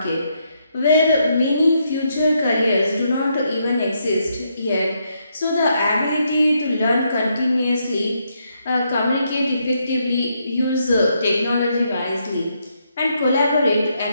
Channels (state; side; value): inverted; both; correlation -0.77